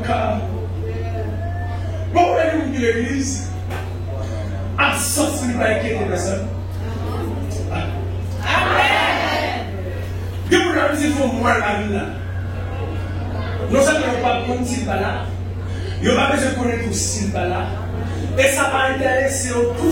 cas. Bon, vous allez nous dire l'église, absence de pas inquiéter personne. Amen. Que vous avez dit, il faut voir la vie là. Nous ne savons pas comment s'il va là. Il n'y a pas besoin de connaître tout s'il va là. Et ça va intéresser tout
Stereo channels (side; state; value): both; identical; correlation 1.00